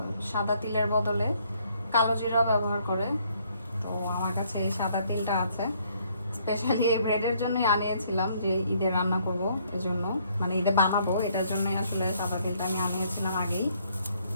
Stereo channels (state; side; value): inverted; both; correlation -0.67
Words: সাদা তিলের বদলে কালো জিরা ব্যবহার করে, তো আমার কাছে এই সাদা তিলটা আছে। স্পেশালি এই ব্রেডের জন্যই আনিয়েছিলাম, যে ঈদে রান্না করবো এজন্য, মানে ঈদে বানাবো এটার জন্যই আসলে সাদা তিলটা আমি আনিয়েছিলাম আগেই।